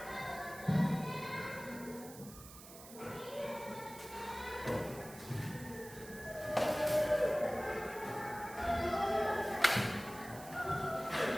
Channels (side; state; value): right; noise; hiss, 16 dB below the sound